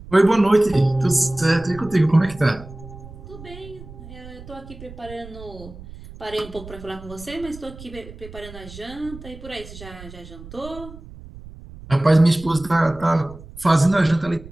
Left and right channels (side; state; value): right; noise; rumble, 16 dB below the sound